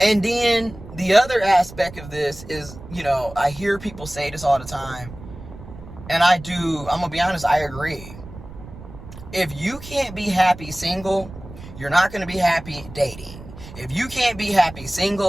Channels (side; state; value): right; noise; rumble, 15 dB below the sound